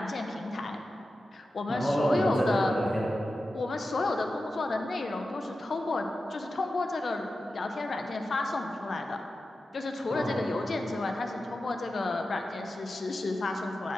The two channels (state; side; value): normal; both; correlation 0.92